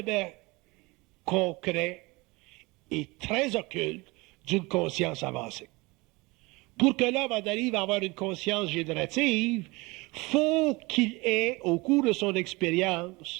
concret et très occulte d'une conscience avancée. Pour que l'homme en arrive à avoir une conscience générative, faut qu'il ait, au cours de son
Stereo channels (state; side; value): quieter; left; 24.2 dB